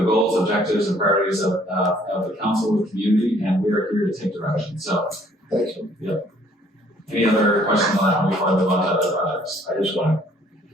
goals, objectives, and priorities of the council, the community, and we are here to take direction. So, Thanks. any other questions on that before I move on to other projects? I just want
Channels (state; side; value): normal; both; correlation 0.60